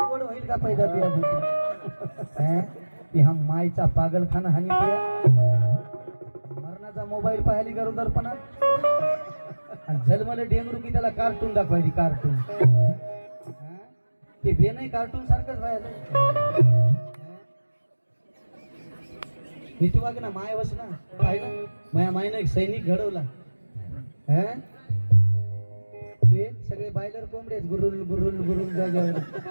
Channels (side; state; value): both; inverted; correlation -1.00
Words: होईल का पैदा ती हा मायचा पागलखाना हानी मरणाचा मोबाईल पाहिली गरोदरपणा आणि जन्मले डेंगरू की त्याला कार्टून दाखवायची. कार्टून ते बे नाही कार्टून सारखंच व्हायला. नीती वाग ना माय वस ना पाहिलं माया मायनं एक सैनिक घडवला. ते सगळे बायलर कोंबडे गुरुल गुरुल गुरुल जाग्यावर